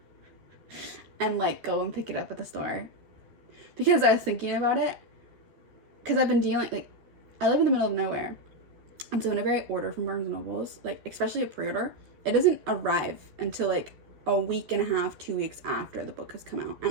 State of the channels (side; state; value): left; late; 13 ms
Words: and like go and pick it up at the store. Because I was thinking about it. Because I've been dealing, like, I live in the middle of nowhere. And so whenever I order from Barnes & Noble's, like, especially a pre-order, it doesn't arrive until like a week and a half, 2 weeks after the book has come out.